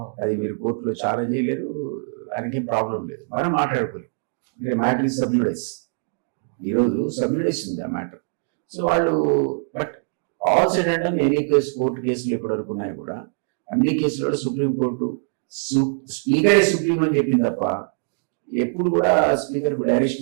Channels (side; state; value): left; silent; digital silence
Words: అది మీరు కోర్టులో ఛాలెంజ్ చేయలేరు, ఆయనకేం ప్రాబ్లం లేదు. మనం మాట్లాడుకోలేదు. Matter is సబ్జుడైస్. ఈరోజు సబ్జుడైస్ ఉంది ఆ మ్యాటర్. సో వాళ్ళు but all said and any case court కేసులు ఇప్పటివరకు ఉన్నాయి కూడా అన్ని కేసులలో సుప్రీంకోర్టు స్పీకరే సుప్రీం అని చెప్పింది తప్ప ఎప్పుడు కూడా స్పీకర్ కు